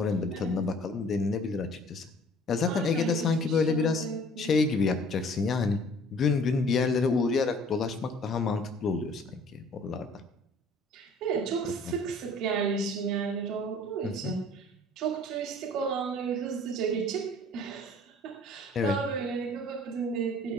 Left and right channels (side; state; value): both; normal; correlation 0.52